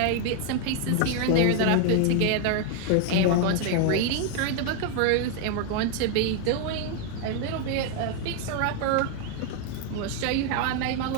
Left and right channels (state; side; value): different; both; correlation 0.01